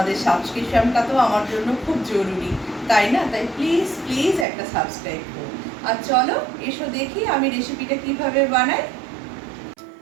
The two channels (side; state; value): left; drops out; at 4.5 s